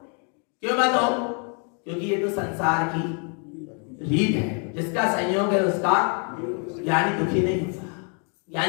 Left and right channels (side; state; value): right; quieter; 39.1 dB